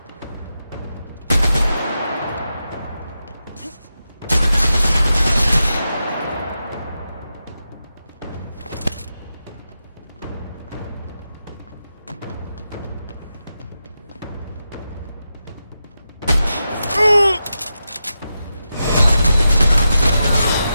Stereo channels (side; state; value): both; inverted; correlation -0.89